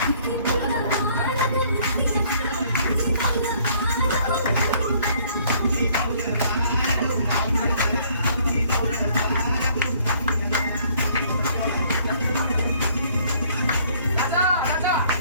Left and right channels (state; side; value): inverted; both; correlation -0.61